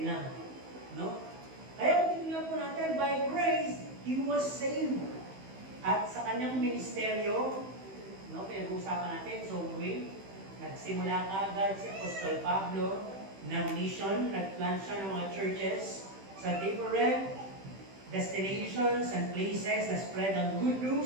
lang. No? Kaya kung titignan po natin, by grace, he was saved. At sa kanyang ministeryo, no, pinag-uusapan natin, so nagsimula agad si Apostol Pablo ng mission, nag-plant siya ng mga churches sa different destinations and places na spread ang good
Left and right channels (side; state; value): left; late; 15 ms